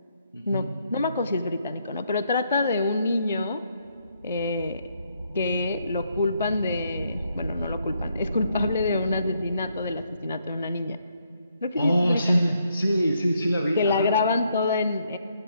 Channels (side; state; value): both; inverted; correlation -0.74